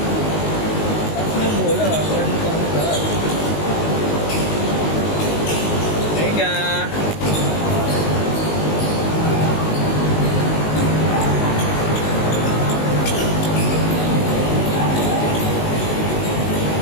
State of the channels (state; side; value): late; right; 19 ms